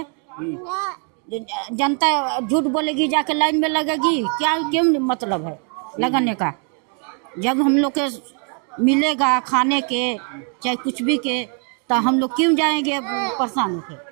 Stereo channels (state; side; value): quieter; left; 37.7 dB